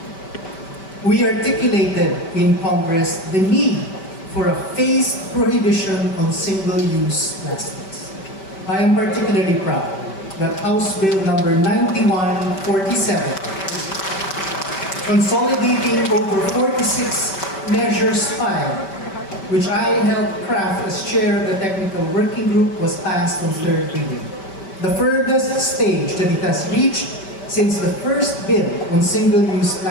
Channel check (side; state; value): right; late; 5.2 ms